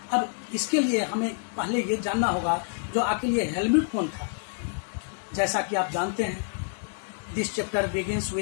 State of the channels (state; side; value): silent; right; 60 dB below the other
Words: अब इसके लिए हमें पहले ये जानना होगा जो आखिर ये हेलमुट कौन था। जैसा कि आप जानते हैं, this chapter begins